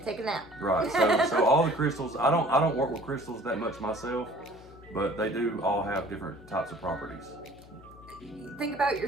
take a nap. Right. So all the crystals, I don't work with crystals that much myself, but they do all have different types of properties. Think about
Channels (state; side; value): noise; left; hum, 20 dB below the sound